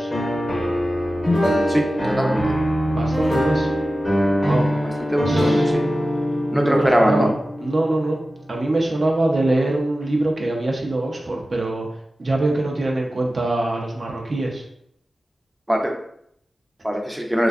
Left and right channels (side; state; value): both; normal; correlation 0.95